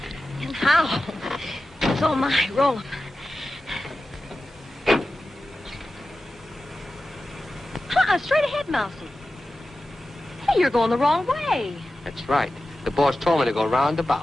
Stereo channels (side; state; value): both; normal; correlation 0.94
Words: And how? So am I. Roll 'em. Straight ahead, Mousy. Hey, you're going the wrong way. That's right. The boss told me to go